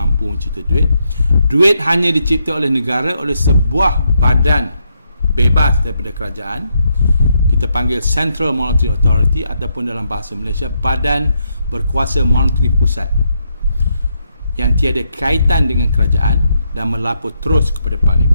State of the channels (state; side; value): inverted; both; correlation -0.78